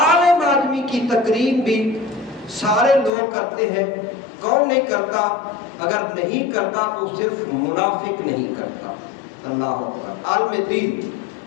آدمی کی تقریر بھی سارے لوگ کرتے ہیں۔ کون نہیں کرتا؟ اگر نہیں کرتا تو صرف منافق نہیں کرتا۔ اللہ اکبر۔ عالم دین،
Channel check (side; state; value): right; drops out; at 3.1 s